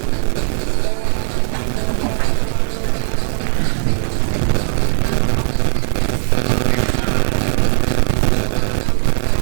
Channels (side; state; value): left; silent; digital silence